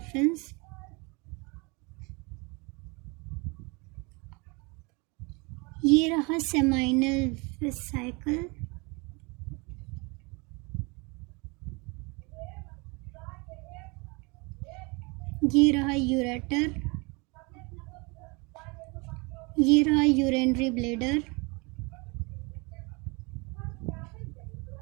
ये रहा सेमाइनल वेसिकल। ये रहा यूरेटर। ये रहा यूरिनरी ब्लैडर।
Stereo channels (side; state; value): left; quieter; 29.0 dB